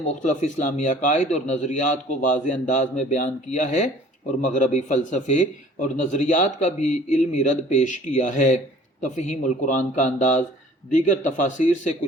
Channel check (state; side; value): normal; both; correlation 0.51